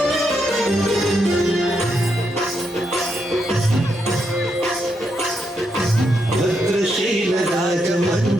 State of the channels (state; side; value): normal; both; correlation 0.80